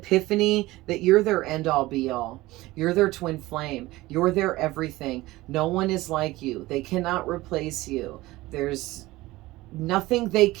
that you're their end all be all. You're their twin flame. You're their everything. No one is like you. They cannot replace you. There's nothing they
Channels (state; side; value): quieter; left; 18.7 dB